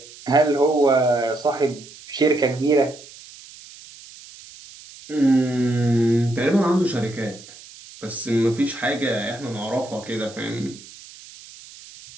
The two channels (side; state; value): right; noise; hiss, 19 dB below the sound